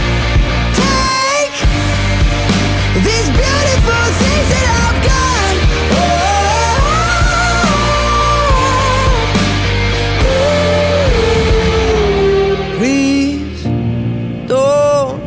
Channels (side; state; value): both; identical; correlation 1.00